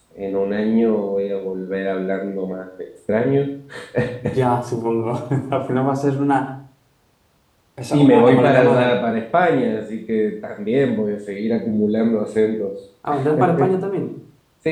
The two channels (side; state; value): both; identical; correlation 1.00